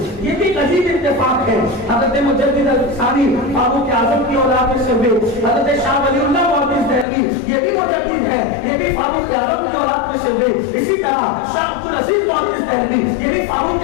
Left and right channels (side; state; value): right; drops out; at 7.1 s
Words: یہ بھی عجیب اتفاق ہے، حضرت مجدد ثانی فاروق اعظم کی اولاد میں سے ہوئے، حضرت شاہ ولی اللہ محدث دہلوی یہ بھی مجدد ہے، یہ بھی فاروق اعظم کی اولاد میں سے ہوئے۔ اسی طرح شاہ عبدالعزیز محدث دہلوی یہ بھی